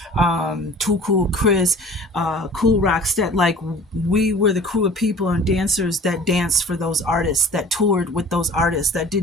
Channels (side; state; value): both; normal; correlation 0.45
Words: Too Cool Chris, Cool Rockstead, like we were the crew of people and dancers that danced for those artists, that toured with those artists, that